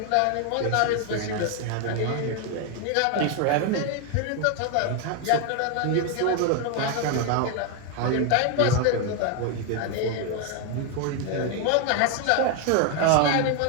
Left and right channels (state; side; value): different; both; correlation 0.01